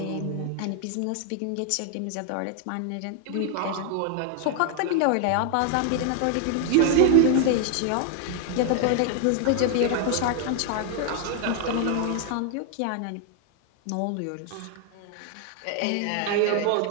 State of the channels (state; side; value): different; both; correlation 0.00